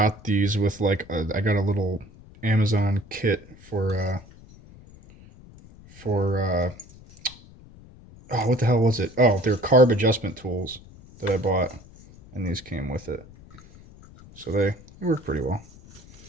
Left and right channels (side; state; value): left; noise; rumble, 22 dB below the sound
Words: these with I got a little Amazon kit for oh, what the hell was it? Oh, they're carb adjustment tools that I bought, and these came with it. So they work pretty well.